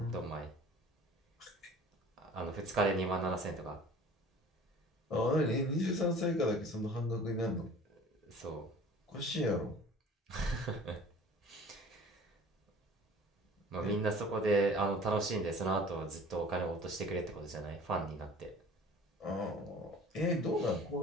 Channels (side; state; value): both; normal; correlation 0.46